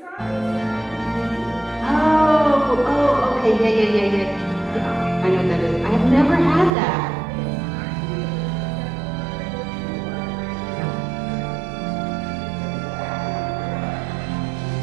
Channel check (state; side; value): drops out; left; at 6.8 s